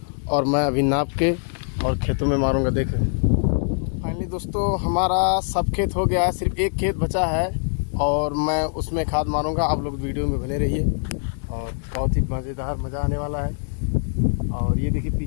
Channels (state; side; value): silent; right; digital silence